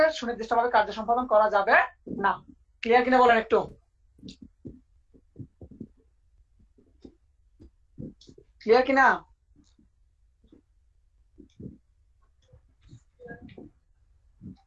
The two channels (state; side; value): identical; both; correlation 1.00